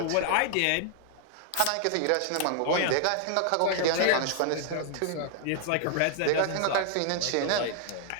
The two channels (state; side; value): different; both; correlation 0.00